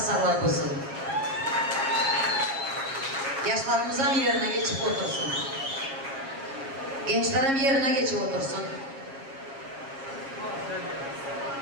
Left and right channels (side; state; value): left; late; 7.3 ms